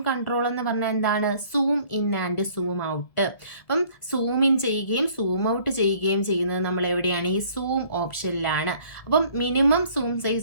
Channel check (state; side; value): late; right; 1.7 ms